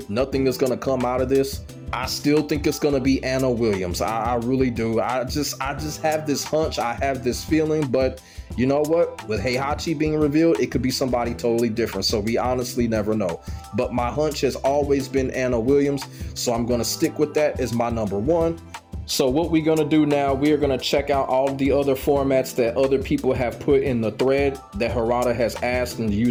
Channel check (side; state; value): both; identical; correlation 1.00